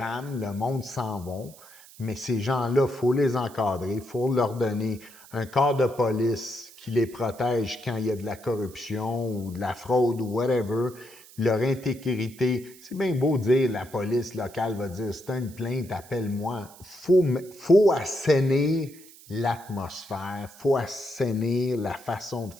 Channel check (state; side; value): noise; right; hiss, 21 dB below the sound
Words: le monde s'en va. Mais ces gens-là, il faut les encadrer, il faut leur donner un corps de police qui les protège quand il y a de la corruption ou de la fraude ou whatever. Leur intégrité, c'est bien beau dire la police locale va dire c'est une plainte, appelle-moi. Faut assainir l'atmosphère, faut assainir la façon de